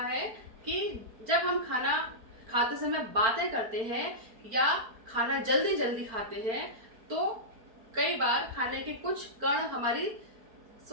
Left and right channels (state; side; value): late; left; 4.4 ms